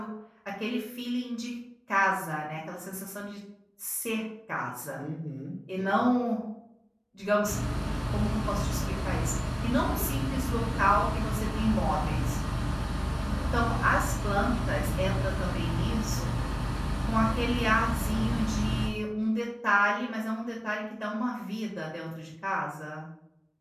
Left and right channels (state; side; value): identical; both; correlation 1.00